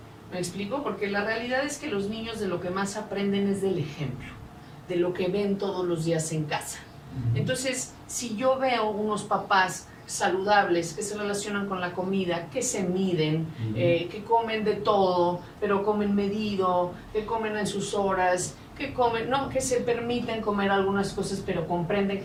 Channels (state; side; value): identical; both; correlation 1.00